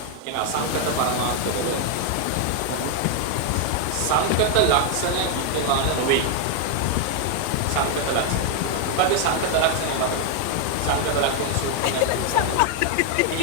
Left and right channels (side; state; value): both; different; correlation 0.00